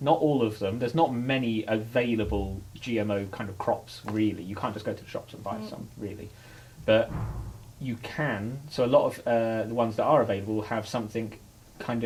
not all of them, there's not many available GMO kind of crops, really. You can't just go to the shops and buy some, really. But you can, so a lot of the ones that are available have something kind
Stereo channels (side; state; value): both; identical; correlation 1.00